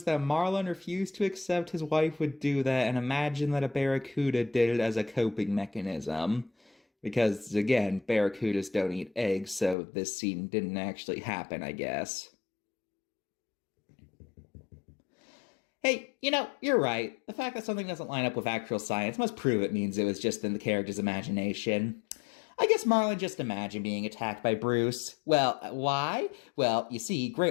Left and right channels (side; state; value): right; drops out; at 9.8 s